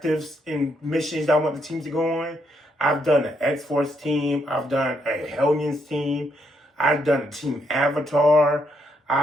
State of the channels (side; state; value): both; normal; correlation 0.75